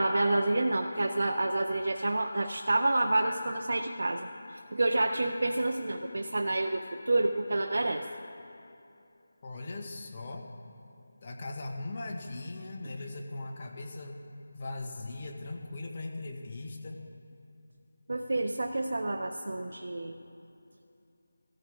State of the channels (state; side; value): inverted; both; correlation -0.97